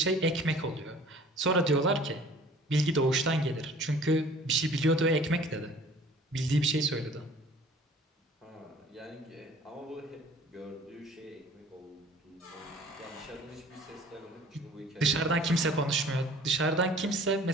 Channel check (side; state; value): both; normal; correlation 0.50